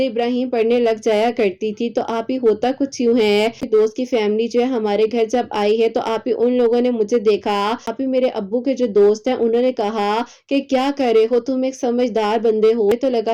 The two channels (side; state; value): both; identical; correlation 1.00